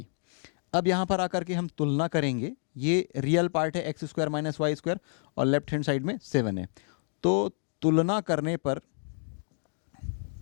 अब यहाँ पर आकर के हम तुलना करेंगे, ये रियल पार्ट है x square minus y square और लेफ्ट हैंड साइड में 7 है। तो तुलना करने पर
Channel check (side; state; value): right; silent; digital silence